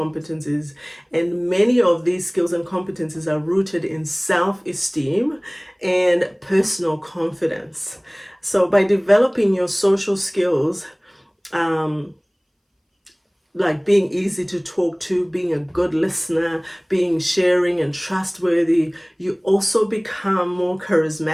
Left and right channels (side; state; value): both; identical; correlation 1.00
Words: And many of these skills and competencies are rooted in self-esteem and personal confidence. So by developing your social skills, like being easy to talk to, being a good listener, being sharing and trustworthy, you also become more